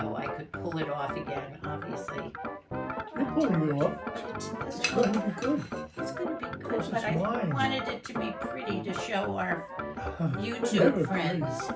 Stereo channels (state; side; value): identical; both; correlation 1.00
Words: I could pull it off again. Obviously, You're pulling it off. It's going to be good. It's going to be good, Because but it's I wine. wanted it to be pretty to show our Never YouTube friends.